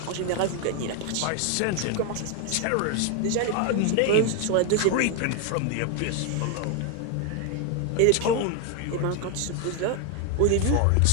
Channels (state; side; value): different; both; correlation 0.01